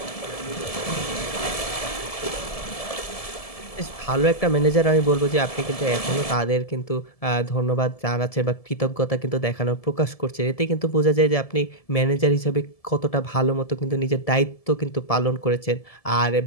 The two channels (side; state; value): right; late; 1.7 ms